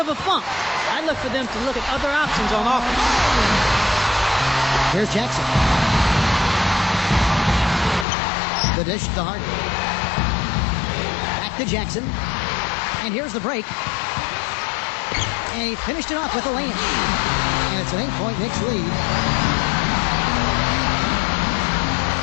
a funk. I'd look for them to look at other options on offense. Here's Jackson. The dish to Harden. Back to Jackson. And here's the break. And he finished it off with a layup. And it's an 8-point Knicks lead.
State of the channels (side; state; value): right; drops out; at 8.1 s